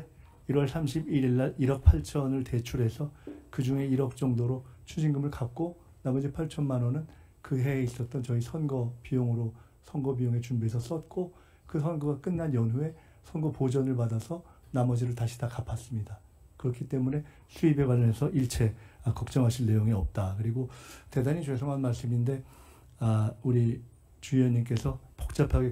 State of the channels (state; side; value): identical; both; correlation 1.00